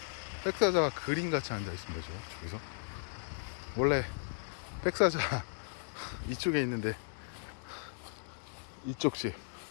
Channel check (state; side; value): silent; right; digital silence